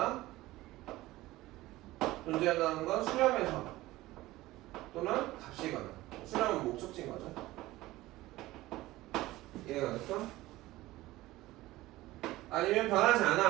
존재한다는 건 수렴에서 또는 값이거나. 수렴은 목적지인 거죠. 이해가 됐어? 아니면 변하지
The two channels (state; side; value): quieter; left; 17.7 dB